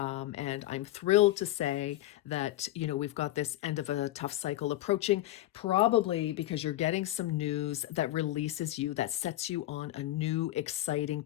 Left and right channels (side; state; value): right; quieter; 15.2 dB